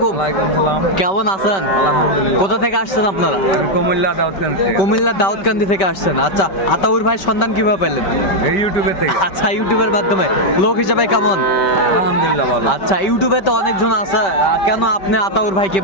কেমন আছেন? কোথা থেকে আসছেন আপনারা? কুমিল্লা দাউদকান্দি থেকে আসছেন। আচ্ছা, আতাউর ভাই সন্ধান কিভাবে পেলেন? ইউটিউবে থেকে। আচ্ছা, ইউটিউবের মাধ্যমে। লোক হিসেবে কেমন? আলহামদুলিল্লাহ ভালো। আচ্ছা, ইউটিউবে তো অনেকজন আছে, কেন আপনি আতাউর ভাইকে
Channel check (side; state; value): right; late; 5.2 ms